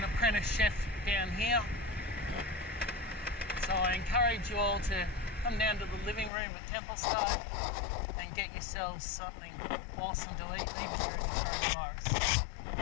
apprentice chef down here. So I encourage you all to come down to the living room at Templestowe and get yourselves something awesome to eat, even during the coronavirus.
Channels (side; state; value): right; drops out; at 6.3 s